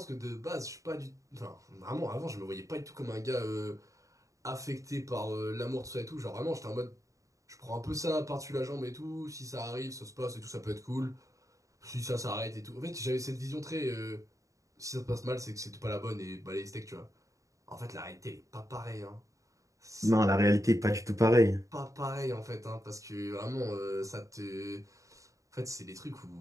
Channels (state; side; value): late; left; 0.16 ms